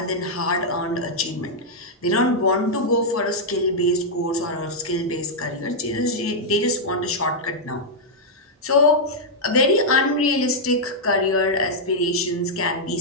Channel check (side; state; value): both; normal; correlation -0.05